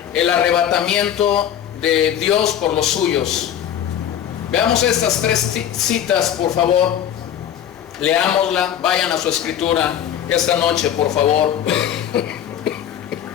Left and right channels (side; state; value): right; quieter; 10.0 dB